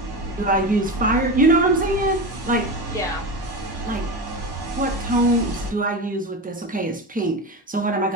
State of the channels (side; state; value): both; normal; correlation 0.23